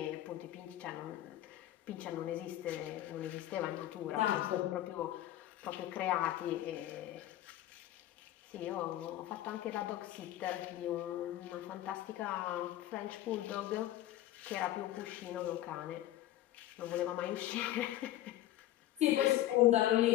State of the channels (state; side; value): quieter; right; 14.0 dB